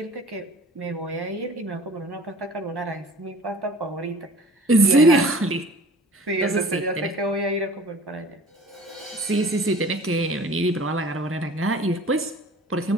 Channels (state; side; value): normal; both; correlation 0.46